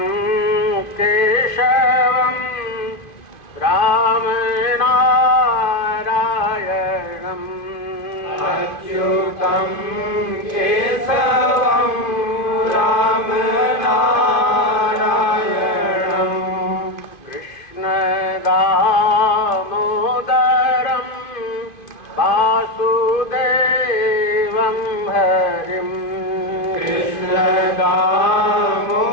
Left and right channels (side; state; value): right; late; 2.5 ms